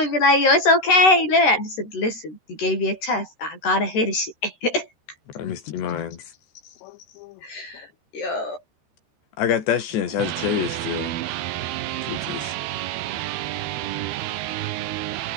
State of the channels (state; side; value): late; right; 13 ms